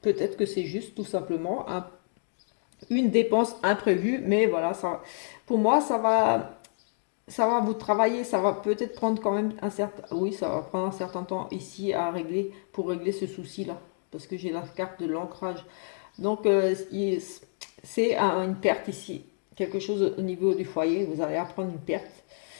Peut-être que c'est juste tout simplement une dépense imprévue, mais voilà, ça, pour moi, ça va vous travailler, ça va peut-être prendre quand même un certain, oui, ça va prendre un certain temps ici à régler, pour régler ce souci-là, parce que j'ai la carte de l'ancrage. Donc, c'est une perte ici, quelque chose au niveau du foyer, vous allez apprendre une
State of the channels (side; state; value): right; silent; digital silence